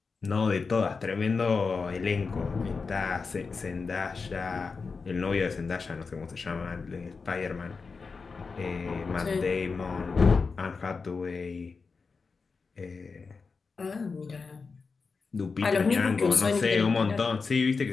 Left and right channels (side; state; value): right; quieter; 4.7 dB